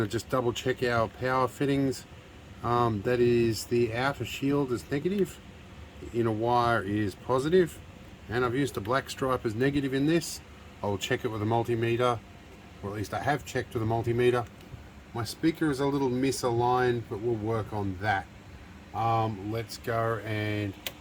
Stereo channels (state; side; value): identical; both; correlation 1.00